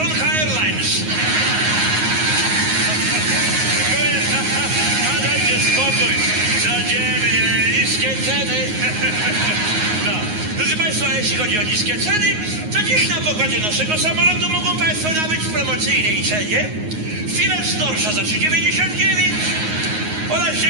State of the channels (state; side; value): late; left; 9.5 ms